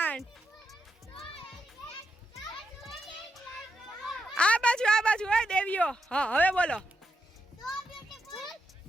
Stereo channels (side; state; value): both; normal; correlation 0.84